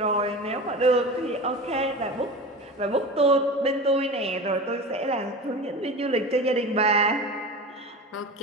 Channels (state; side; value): normal; both; correlation 0.31